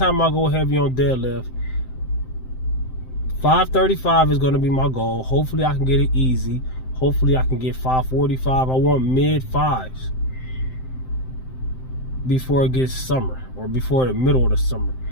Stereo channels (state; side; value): late; right; 7.7 ms